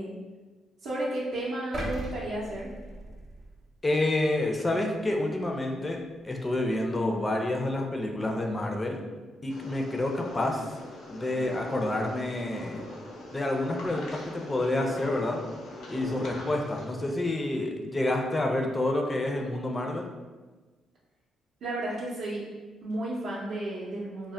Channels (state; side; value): normal; both; correlation 0.85